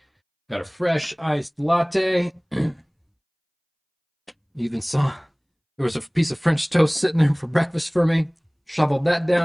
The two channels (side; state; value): both; identical; correlation 1.00